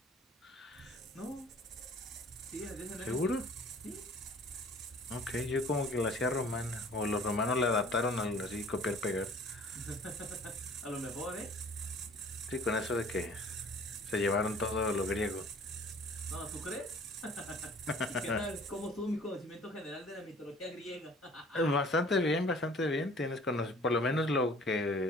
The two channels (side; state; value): both; normal; correlation 0.50